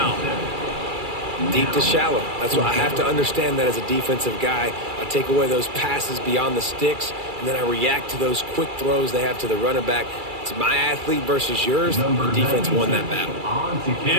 Deep to shallow. That's what I have to understand that as a defensive guy. I take away those passes beyond the sticks, and then I react to those quick throws they have to the running back. It's my athlete versus yours. The defense won that battle.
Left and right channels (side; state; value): left; late; 2.3 ms